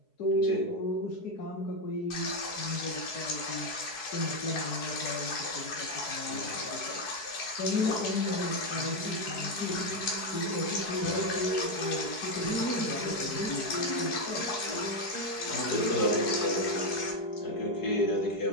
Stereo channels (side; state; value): right; late; 4.7 ms